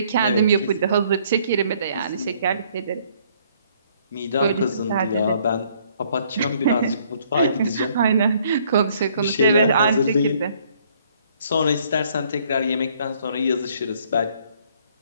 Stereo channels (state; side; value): inverted; both; correlation -0.64